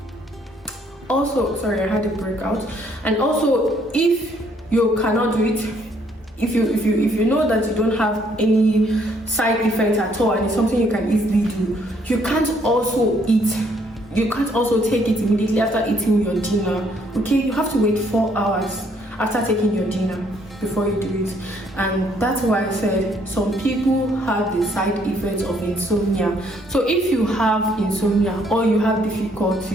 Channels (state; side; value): normal; both; correlation 0.67